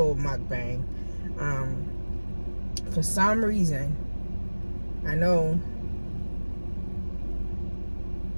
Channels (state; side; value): inverted; both; correlation -1.00